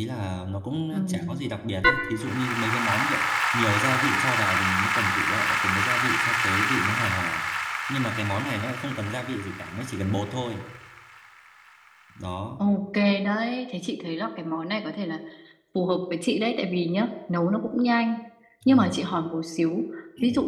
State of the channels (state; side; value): identical; both; correlation 1.00